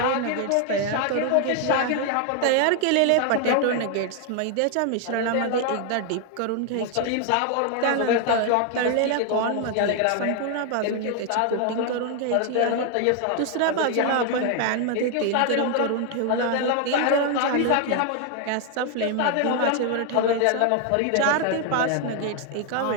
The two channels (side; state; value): both; different; correlation 0.00